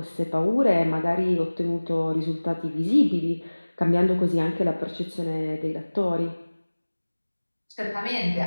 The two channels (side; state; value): both; inverted; correlation -1.00